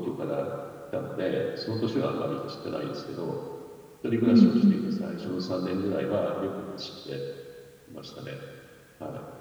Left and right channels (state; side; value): identical; both; correlation 1.00